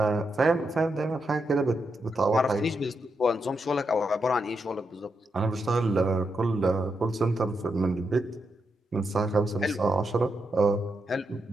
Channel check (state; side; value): normal; both; correlation 0.84